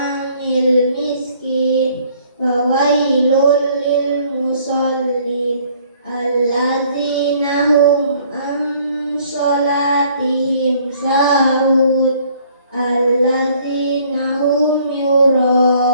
miskin wa wailul lil musallin alladzina hum an sholatihim sahun alladzina hum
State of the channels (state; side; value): inverted; both; correlation -0.60